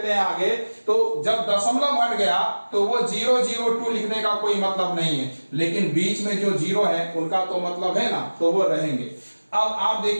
हैं आगे, तो जब दशमलव हट गया तो वो 0 0 2 लिखने का कोई मतलब नहीं है, लेकिन बीच में जो जीरो है उनका तो मतलब है ना, तो वो रहेंगे। अब आप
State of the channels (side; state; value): both; inverted; correlation -1.00